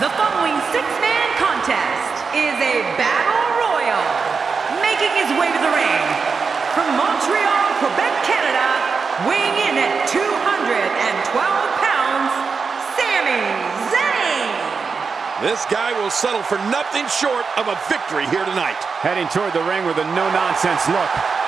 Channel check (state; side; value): quieter; left; 5.2 dB